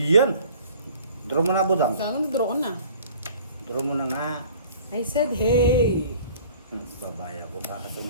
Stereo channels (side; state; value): both; inverted; correlation -0.49